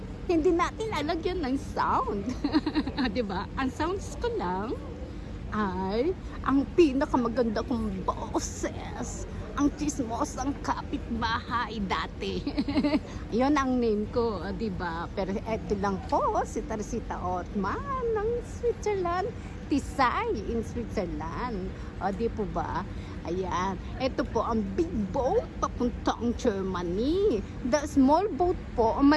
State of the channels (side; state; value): both; identical; correlation 1.00